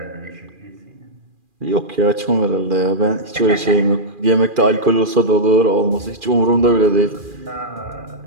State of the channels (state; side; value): late; left; 2.4 ms